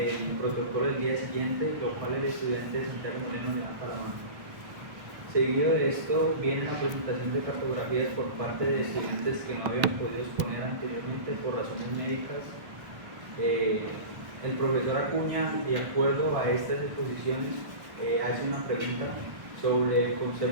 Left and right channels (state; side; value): late; left; 1.3 ms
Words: protocolo del día siguiente, lo cual el estudiante Santiago Moreno le da para la mano. Seguido de esto viene la presentación de cartografías por parte de estudiantes que no habían podido exponer anteriormente por razones médicas. El profesor Acuña, de acuerdo a estas exposiciones, hace una pregunta sobre el